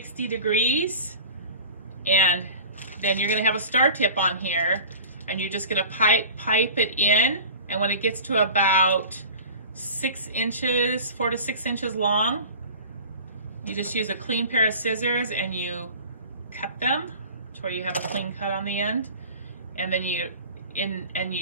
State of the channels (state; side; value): inverted; both; correlation -0.40